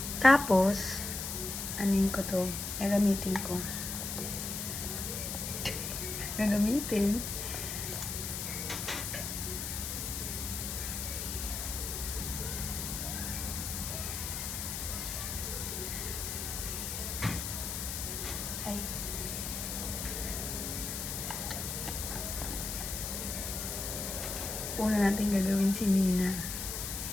Tapos, anin ko to? Gagamitin ko. Gagamitin. Ay. Una natin gagawin si Nina.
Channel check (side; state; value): left; noise; hiss, 4 dB below the sound